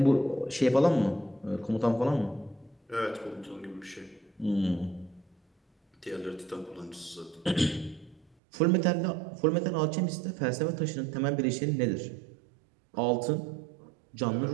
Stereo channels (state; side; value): drops out; left; at 8.3 s